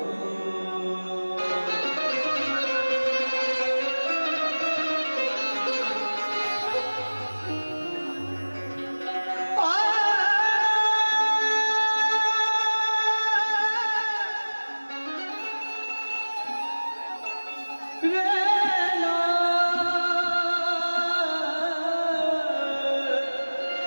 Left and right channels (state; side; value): inverted; both; correlation -1.00